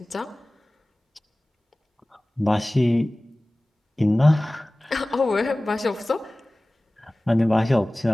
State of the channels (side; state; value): both; normal; correlation 0.98